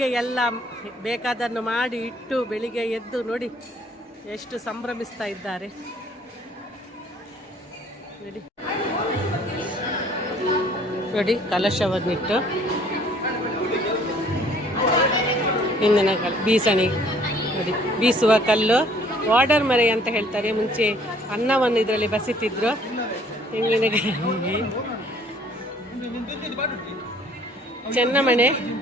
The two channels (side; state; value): both; normal; correlation 0.58